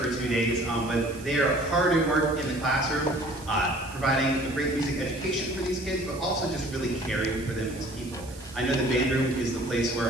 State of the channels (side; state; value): right; noise; hiss, 18 dB below the sound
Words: 2 days, but they are hard at work in the classroom, providing a great music education for these kids, but also just really caring for them as people. I know the band room is the place